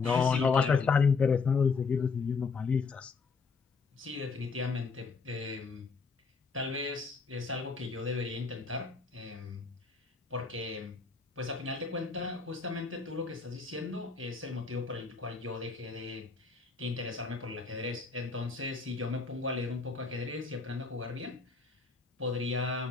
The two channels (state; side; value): quieter; right; 4.8 dB